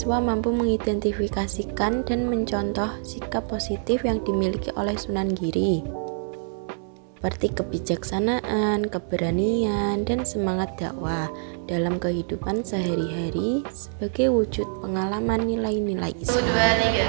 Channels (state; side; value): silent; left; 62 dB below the other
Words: mampu mengidentifikasikan dan mencontoh sikap positif yang dimiliki oleh Sunan Giri, seperti kebijaksanaan, keberanian, dan semangat dakwah dalam kehidupan sehari-hari sebagai wujud pengalaman nilai-nilai Islam. 1, 2,